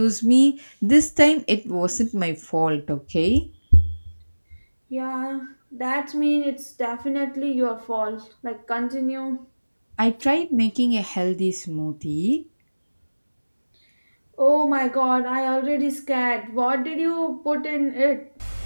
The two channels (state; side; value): inverted; both; correlation -1.00